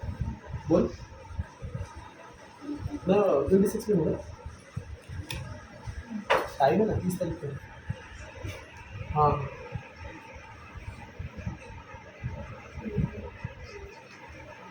बोल ना, 26 में होगा टाइम है ना, 30 तारीख को। हाँ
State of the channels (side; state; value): both; identical; correlation 1.00